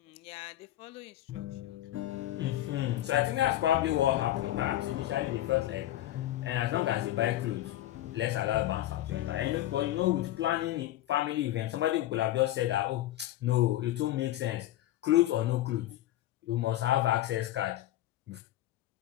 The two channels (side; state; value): right; quieter; 14.3 dB